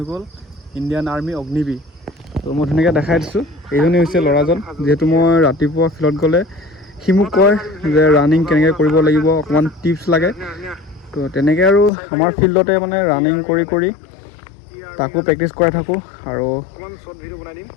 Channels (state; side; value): drops out; right; at 11.9 s